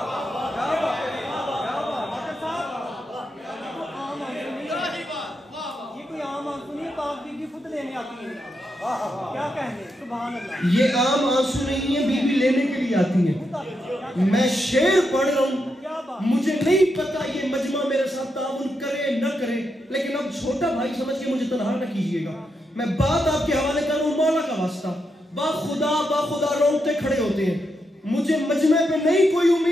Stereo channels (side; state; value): both; normal; correlation 0.83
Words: یہ عام آنسو نہیں ہے، بیوی لینے کے لیے آتی ہے۔ میں شعر پڑھ رہا ہوں، مجھے نہیں پتا یہ مجمع میرے ساتھ تعاون کرے نہ کرے، لیکن اب چھوٹا بھائی سمجھ کے مجھے تنہا نہ کیجئے گا۔ میں بات آپ کے حوالے کر رہا ہوں، مولا کا واسطہ، با خدا روتے کھڑے ہوتے ہیں، مجھے مجمع پہ نہیں کوئی